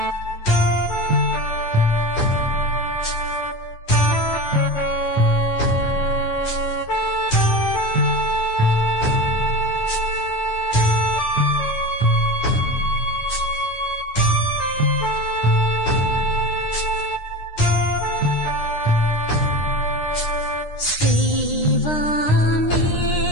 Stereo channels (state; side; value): late; right; 9.8 ms